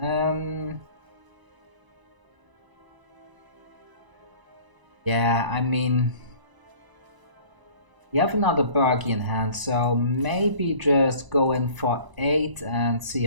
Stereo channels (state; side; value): late; left; 1.0 ms